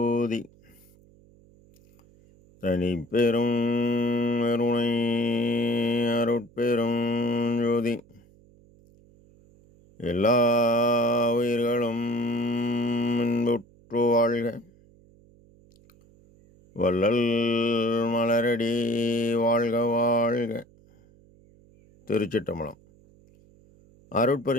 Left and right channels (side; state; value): right; noise; hum, 28 dB below the sound